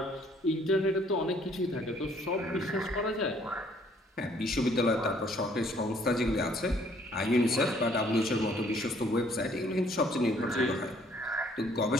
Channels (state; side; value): normal; both; correlation 0.62